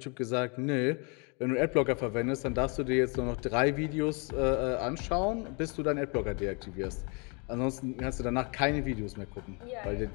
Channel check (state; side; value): quieter; right; 33.8 dB